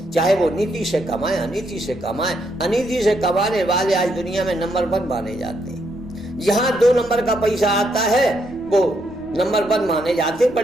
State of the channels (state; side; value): noise; right; rumble, 24 dB below the sound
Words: चाहे वो नीति से कमाए, अनीति से कमाए। अनीति से कमाने वाले आज दुनिया में नंबर 1 माने जाते हैं। जहाँ 2 नंबर का पैसा आता है वो नंबर 1 माने जाते।